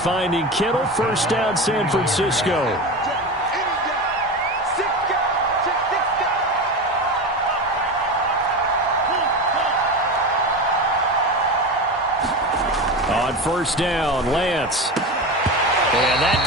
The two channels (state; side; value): normal; both; correlation 0.24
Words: Kittle, first down San Francisco. On first down, Lance. And that's